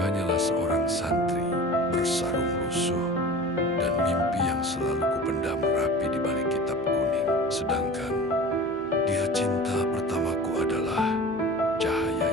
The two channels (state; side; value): noise; left; hum, 27 dB below the sound